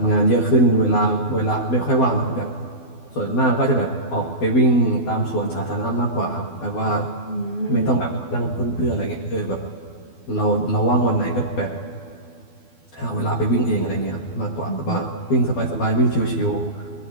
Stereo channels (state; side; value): late; right; 12 ms